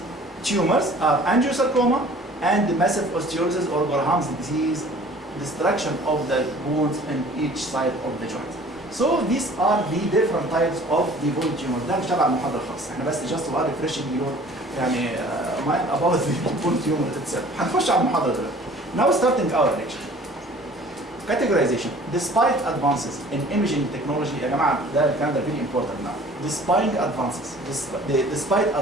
tumors are angiosarcoma and massive osteolysis or Gorham's disease, destruction of the bones in each side of the joint. So these are the different types of the bone tumors. ده مش تبع المحاضرة خالص. احنا بس just while refreshing your يعني mine about the bone tumor itself. هنخش على المحاضرة دلوقتي. Now starting our lecture. Categorization. Despite advances in imaging technology يا جماعة ده الكلام ده very important now. Despite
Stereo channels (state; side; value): normal; both; correlation 0.49